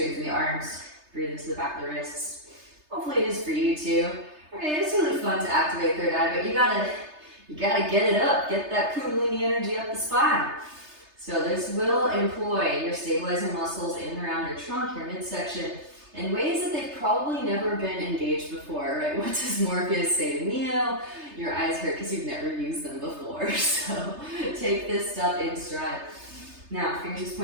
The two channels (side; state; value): left; late; 3.3 ms